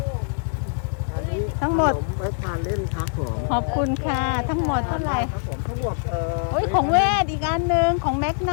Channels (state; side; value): silent; right; digital silence